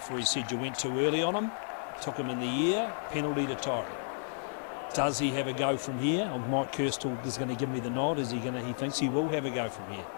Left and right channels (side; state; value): right; silent; digital silence